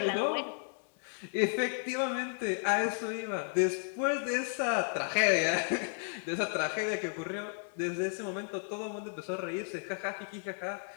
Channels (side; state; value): right; silent; 55 dB below the other